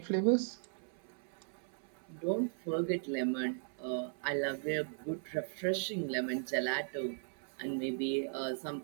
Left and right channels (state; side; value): silent; left; 53 dB below the other